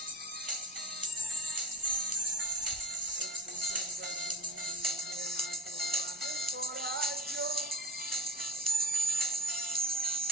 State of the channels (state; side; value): normal; both; correlation 0.34